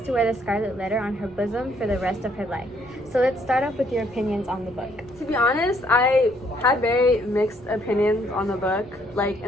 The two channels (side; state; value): right; noise; rumble, 24 dB below the sound